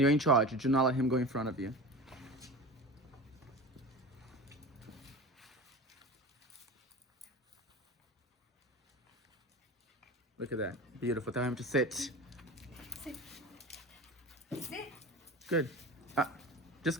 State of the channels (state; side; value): normal; both; correlation 0.32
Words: in charge. Do not let him go in front of you. Look at that. Beautiful. Tell him to sit. Sit. Sit. Good. Just